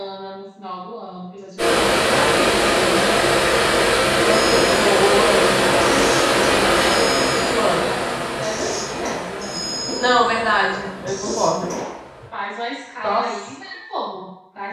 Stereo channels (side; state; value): both; identical; correlation 1.00